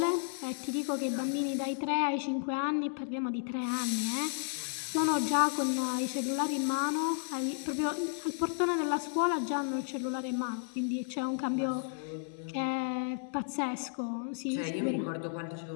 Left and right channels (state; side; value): silent; right; 56 dB below the other